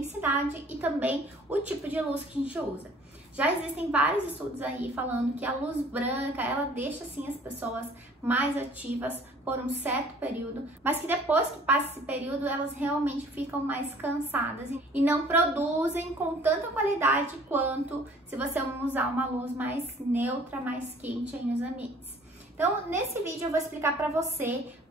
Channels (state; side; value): normal; both; correlation 0.53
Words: e também o tipo de luz que a gente usa. Já existem vários estudos aí falando que a luz branca, ela deixa assim as pessoas mais ativas por um certo período, mas que depois que passa esse período, elas realmente ficam mais cansadas e não produzem com tanta qualidade quanto se você usar uma luz mais neutra, mais quente aí nos ambientes. Então, nesse vídeo eu vou explicar para você